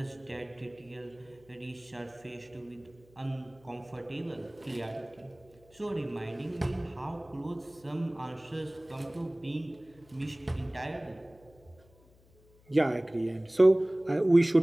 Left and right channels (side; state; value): left; noise; hum, 28 dB below the sound